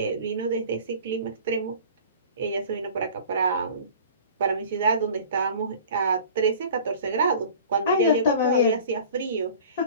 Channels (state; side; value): inverted; both; correlation -0.44